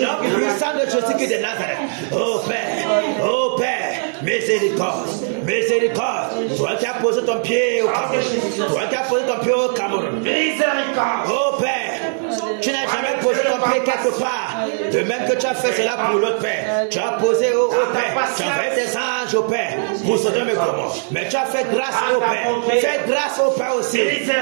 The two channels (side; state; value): left; silent; 66 dB below the other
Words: puissant de Jésus de Nazareth. Oh Père. Oh Père. Miséricorde. Miséricorde. Toi qui as posé ton pied au Cameroun. Toi qui as posé ton pied au Cameroun. Miséricorde. Oh Père, tu n'as jamais posé ton pied quelque part. De même que tu as fait cela pour l'autre Père. Tu as posé au Père. Tu as fait des anges au Père pour Sodome et Gomorrhe. Mais tu as fait grâce au Père. Fais grâce au Père aussi